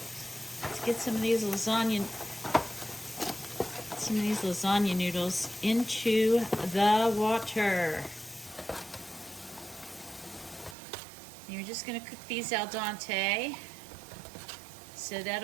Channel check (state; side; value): drops out; left; at 10.8 s